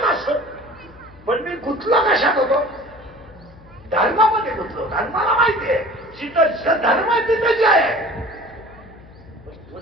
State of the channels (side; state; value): left; noise; hum, 23 dB below the sound